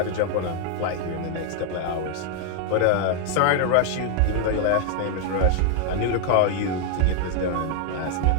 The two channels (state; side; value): different; both; correlation 0.00